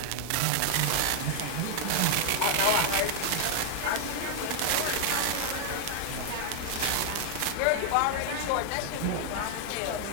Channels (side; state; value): both; different; correlation 0.00